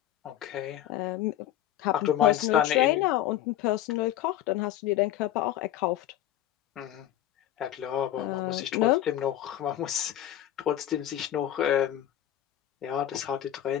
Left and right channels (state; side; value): quieter; right; 12.3 dB